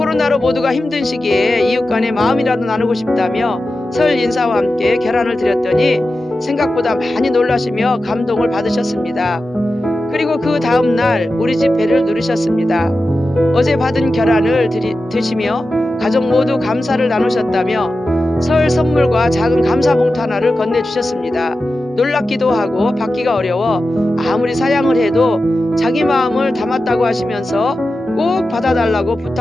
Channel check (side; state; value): both; normal; correlation 0.92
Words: 모두가 힘든 시기에 이웃 간의 마음이라도 나누고 싶다며 설 인사와 함께 계란을 드렸더니 생각보다 많이 놀라시며 감동을 받으셨습니다. 그리고 그 다음날 우리 집 배를 누리셨습니다. 어제 받은 계란을 드시며 가족 모두 감사를 나누셨다며 설 선물과 작은 감사 봉투 하나를 건네주셨습니다. 놀랍기도 하고 받기가 어려워 아무리 사양을 해도 자기 마음을 담았다고 하시면서 꼭 받아달라고